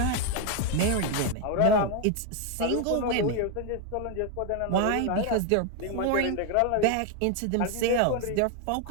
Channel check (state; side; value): different; both; correlation 0.01